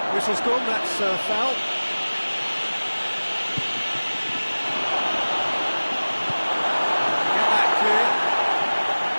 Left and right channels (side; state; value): both; inverted; correlation -1.00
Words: Whistle's gone, that's a foul. Get that clear.